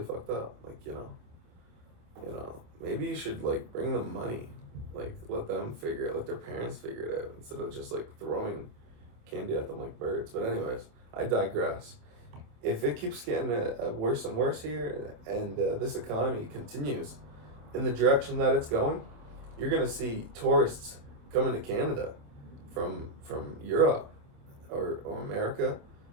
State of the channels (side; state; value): left; late; 27 ms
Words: fucked up. Like, maybe you should like bring them money, like let their parents figure it out instead of just like throwing candy at them like birds. But anyways, I digress. If it keeps getting worse and worse here, and this economy continues in the direction that it's going, you're gonna see tourists coming to Canada from Europe or America,